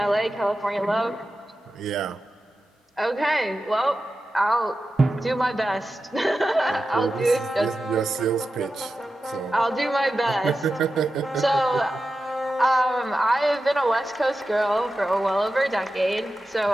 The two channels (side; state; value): both; normal; correlation 0.92